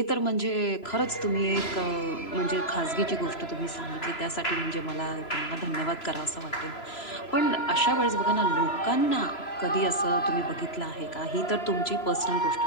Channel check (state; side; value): late; right; 3.0 ms